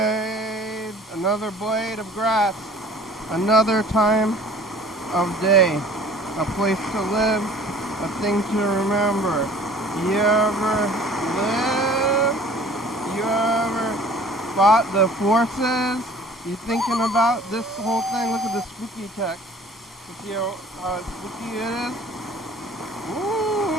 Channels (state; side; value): normal; both; correlation 0.49